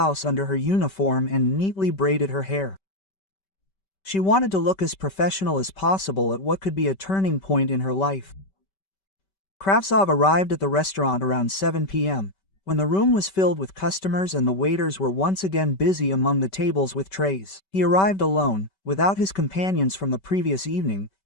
under her uniform and neatly braided her hair. She wanted to look as professional as possible at what could be a turning point in her life. Kravtsov arrived at the restaurant around 7 p.m., when the room was filled with customers and the waiters were once again busy among the tables with trays. He arrived alone, without his companions from the previous evening,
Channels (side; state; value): right; late; 5.2 ms